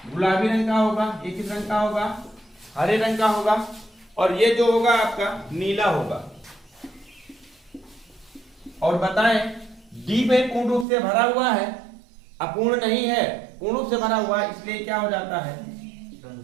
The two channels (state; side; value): drops out; left; at 10.9 s